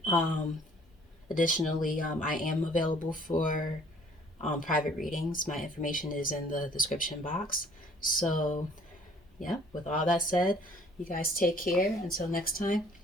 Um, Additionally, I am available for private readings. My information is in the description box. So, yeah, with all that said, you guys take care. Until next time,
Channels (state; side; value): normal; both; correlation 0.56